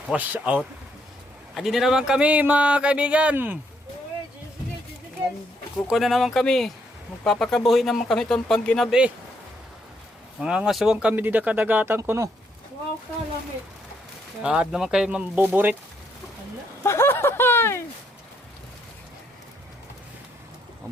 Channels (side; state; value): both; normal; correlation 0.74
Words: Wash out! Adi na naman kami mga kaibigan. Kuko na naman kami. Magpapakabuhi naman kami itong pangginabi. Mga ngasuwang kami di kadagatan ko no. Wow, kalamit. At naman kayo mambuburit.